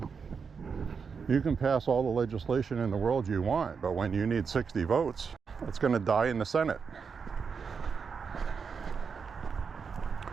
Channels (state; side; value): quieter; left; 5.8 dB